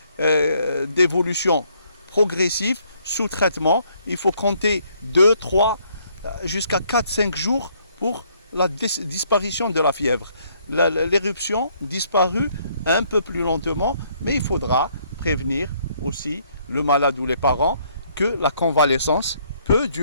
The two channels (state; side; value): inverted; both; correlation -0.67